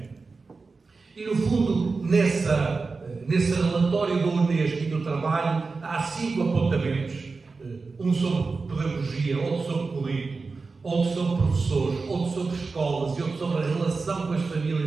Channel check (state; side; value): quieter; left; 4.2 dB